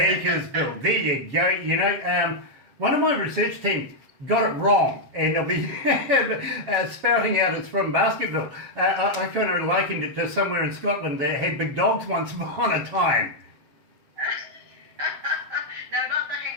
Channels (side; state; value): left; late; 7.3 ms